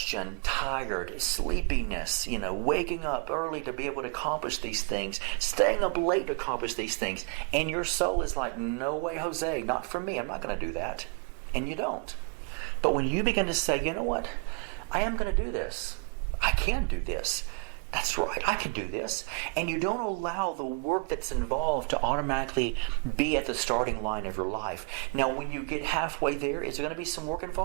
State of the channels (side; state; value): left; quieter; 34.9 dB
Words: tired, sleepiness, waking up early to be able to accomplish these things, staying up late to accomplish these things. And your soul is like, no way, Jose, not for me. I'm not going to do that. And you don't. But when you begin to say, you know what? I am going to do this. I can do this. That's right, I can do this. And you don't allow the work that's involved to automatically be at the starting line of your life. Now, when you get halfway there, is there going to be some work